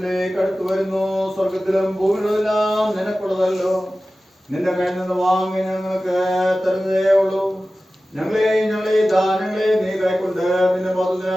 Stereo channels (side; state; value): both; normal; correlation 0.96